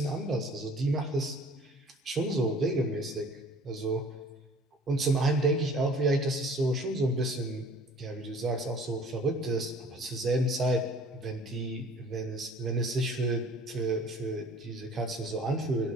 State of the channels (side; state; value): both; normal; correlation 0.50